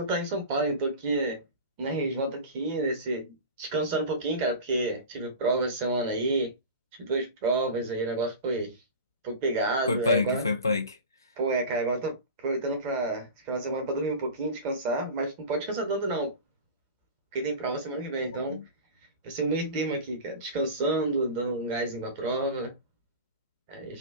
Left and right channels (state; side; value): inverted; both; correlation -0.31